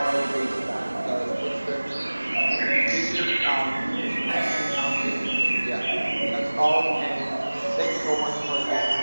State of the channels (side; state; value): both; inverted; correlation -1.00